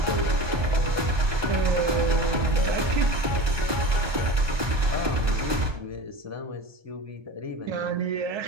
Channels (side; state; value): left; late; 1.2 ms